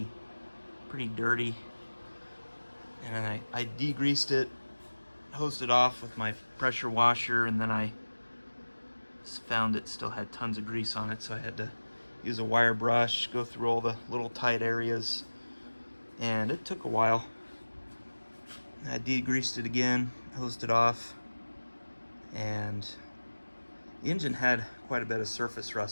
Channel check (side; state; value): both; inverted; correlation -1.00